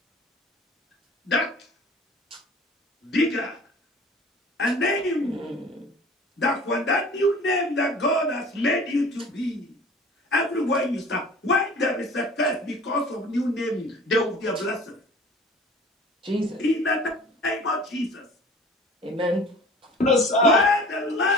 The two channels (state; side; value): normal; both; correlation 0.45